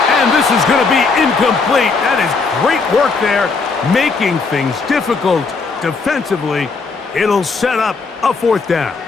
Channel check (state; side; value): quieter; right; 4.4 dB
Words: And this is going to be incomplete. That is great work there, making things difficult defensively. It'll set up a 4th down.